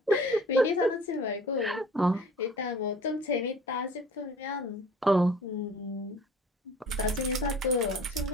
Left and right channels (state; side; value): normal; both; correlation 0.47